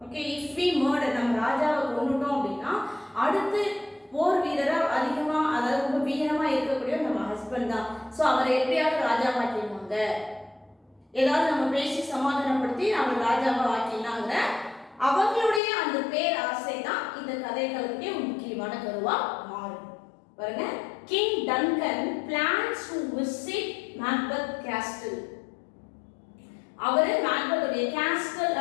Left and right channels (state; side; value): drops out; right; at 15.6 s